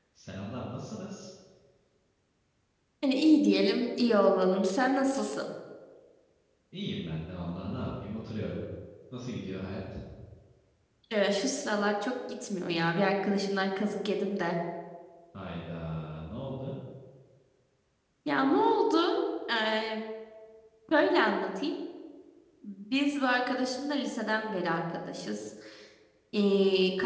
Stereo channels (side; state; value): both; identical; correlation 1.00